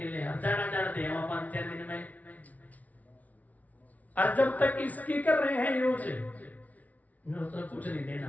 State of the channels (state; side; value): late; right; 0.071 ms